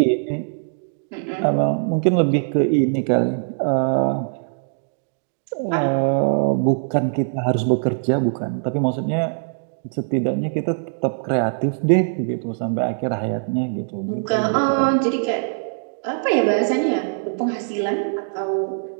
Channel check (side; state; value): left; silent; digital silence